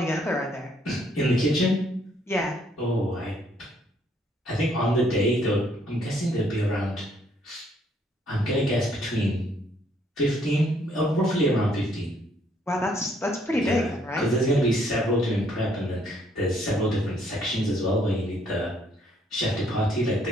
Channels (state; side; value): normal; both; correlation 0.67